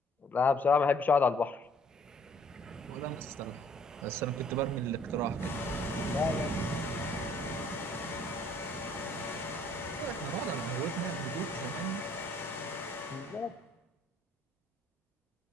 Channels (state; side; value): normal; both; correlation 0.61